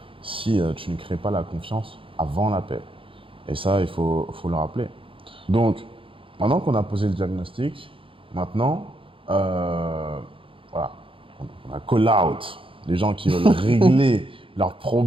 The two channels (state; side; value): late; left; 0.26 ms